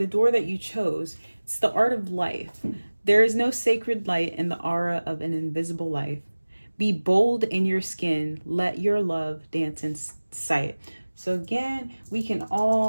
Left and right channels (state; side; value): inverted; both; correlation -1.00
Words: door that you chose, it's the art of life. There is no sacred light in the aura of an invisible life. Be bold in your skin. Let your love dance in sight. So again, we can